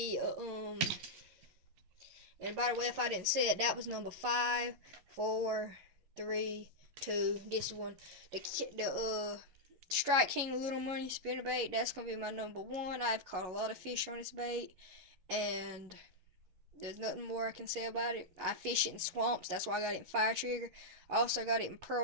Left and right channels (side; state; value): left; late; 11 ms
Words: and by the way, if I didn't say it, that was number 5, 4, 3, 2. This one, the Strike King Little Money spinnerbait. That's gonna be my number one. I've caught a lot of fish on this bait, and there's nothing more I can say about it. I fish it in swamps. That's why I got it in Fire Trigger. I also got it in